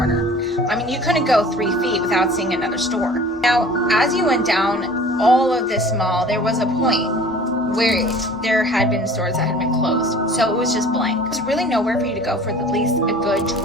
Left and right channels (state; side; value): normal; both; correlation 0.46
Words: I mean, you couldn't go 3 feet without seeing another store. Now, as you went down all of this mall, there was a point where there had been stores that had been closed. So it was just blank. There's really nowhere for you to go for at least a good